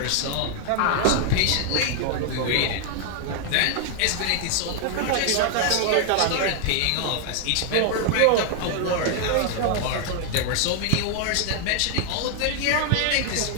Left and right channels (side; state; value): both; different; correlation 0.00